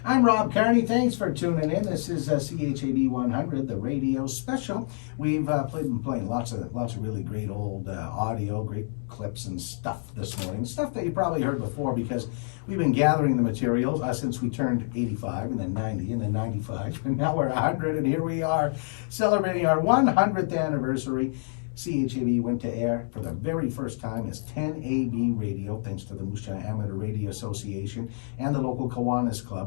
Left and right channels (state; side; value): silent; right; digital silence